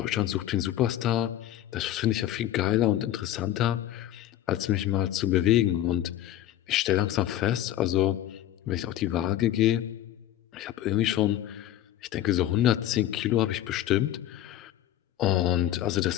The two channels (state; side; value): quieter; right; 12.7 dB